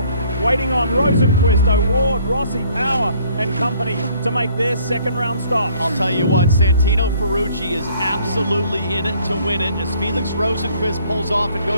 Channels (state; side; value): inverted; both; correlation -0.60